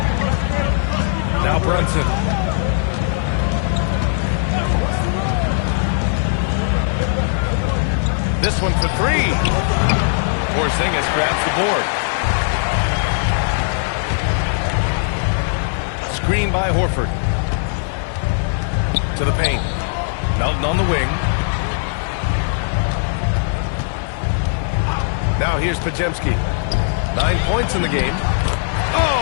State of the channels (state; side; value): silent; right; 60 dB below the other